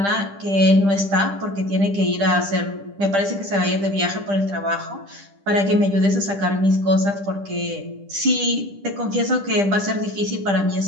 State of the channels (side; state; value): left; late; 10 ms